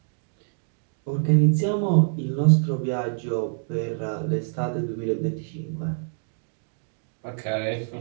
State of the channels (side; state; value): left; silent; digital silence